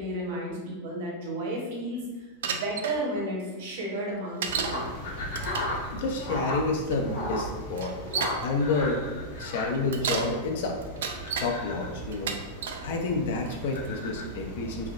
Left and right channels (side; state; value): both; normal; correlation -0.14